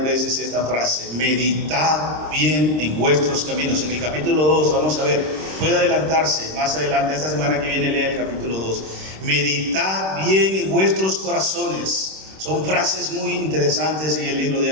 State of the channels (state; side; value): late; left; 26 ms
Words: veces esta frase: meditad bien en vuestros caminos. En el capítulo 2, vamos a ver, puede adelantarse más adelante, esta semana que viene lea el capítulo 2. Meditad bien en vuestros corazones. Son frases muy interesantes en el libro de